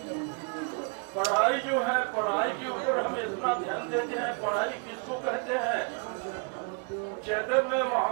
पढ़ाई जो है, पढ़ाई के ऊपर हम इतना ध्यान देते हैं, पढ़ाई किसको कहते हैं। चैतन्य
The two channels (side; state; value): left; quieter; 33.5 dB